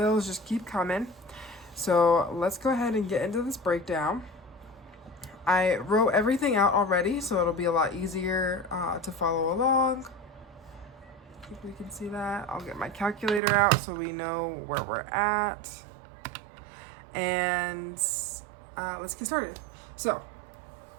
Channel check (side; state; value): left; drops out; at 13.4 s